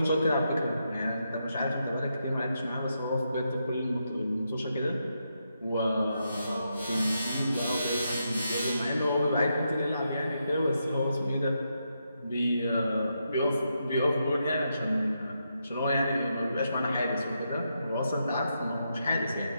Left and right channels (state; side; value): inverted; both; correlation -0.83